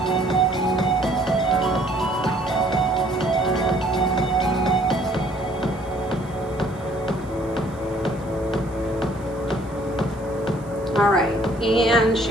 All right, and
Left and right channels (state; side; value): noise; right; hiss, 27 dB below the sound